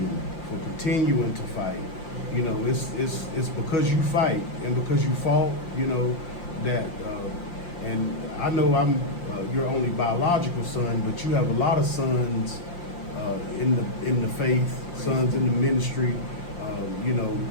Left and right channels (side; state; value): right; late; 5.8 ms